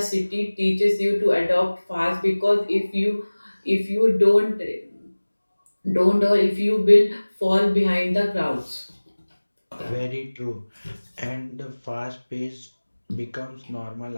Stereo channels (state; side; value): inverted; both; correlation -1.00